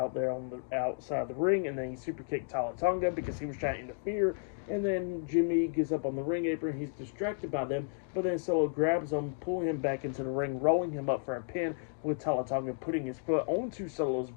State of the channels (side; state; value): right; silent; digital silence